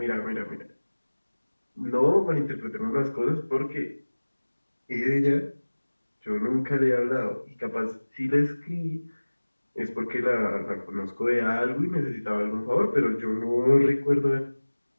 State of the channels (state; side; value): inverted; both; correlation -1.00